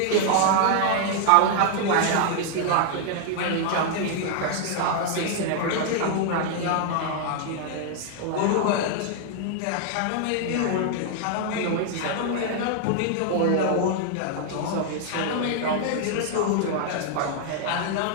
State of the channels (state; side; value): different; both; correlation 0.00